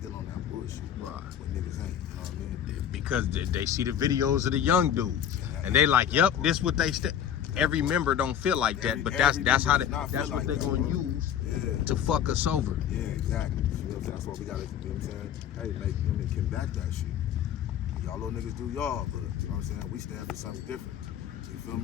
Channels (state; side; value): quieter; right; 9.5 dB